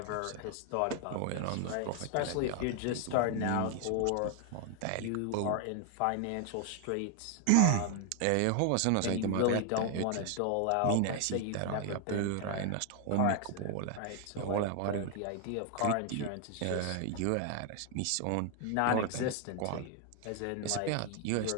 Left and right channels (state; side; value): different; both; correlation 0.01